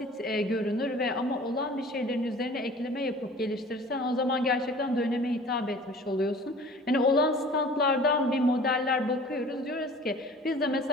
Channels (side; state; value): both; normal; correlation 0.46